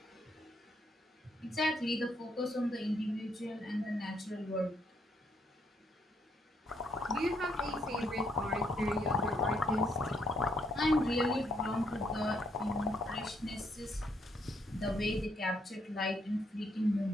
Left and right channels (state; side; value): normal; both; correlation 0.73